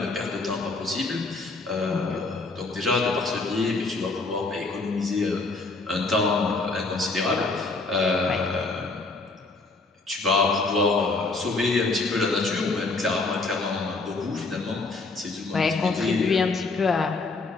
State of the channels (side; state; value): right; quieter; 3.6 dB